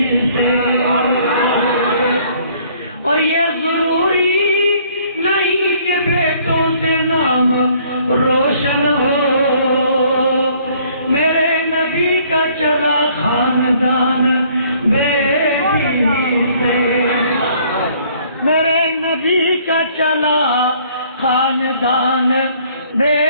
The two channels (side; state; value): both; inverted; correlation -0.60